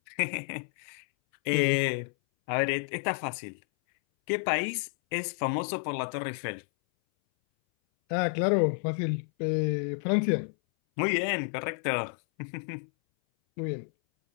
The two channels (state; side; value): silent; right; 58 dB below the other